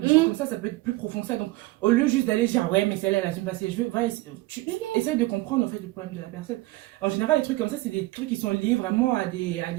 choses comme ça peut être plus profond que ça. Donc, au lieu juste d'aller dire, ouais, mais celle-là, elle assume pas ses cheveux, va, tu essaies de comprendre, en fait, le problème de la personne. En général, les trucs comme ça, c'est des trucs qui sont liés vraiment à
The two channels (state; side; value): quieter; left; 19.8 dB